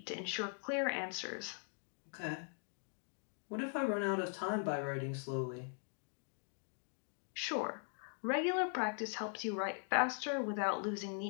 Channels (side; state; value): right; silent; 50 dB below the other